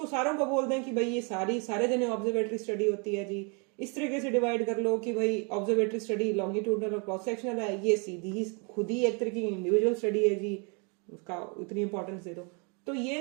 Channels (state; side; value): quieter; left; 34.5 dB